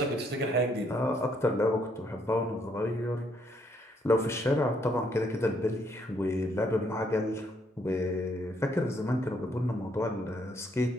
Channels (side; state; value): both; normal; correlation 0.71